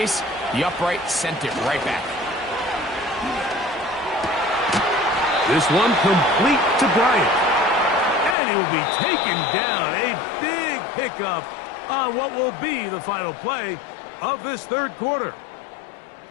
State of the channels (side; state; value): right; drops out; at 8.3 s